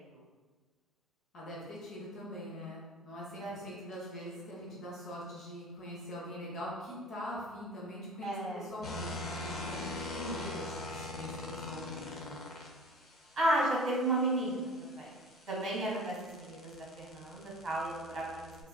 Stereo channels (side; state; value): both; normal; correlation 0.42